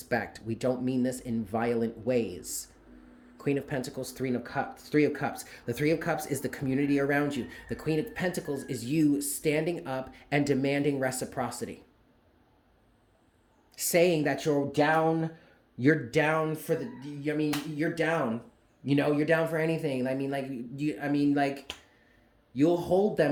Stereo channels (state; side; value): identical; both; correlation 1.00